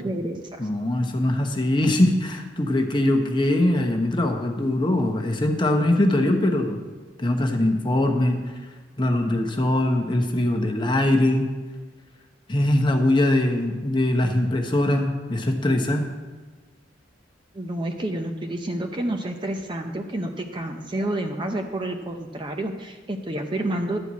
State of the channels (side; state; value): both; normal; correlation 0.85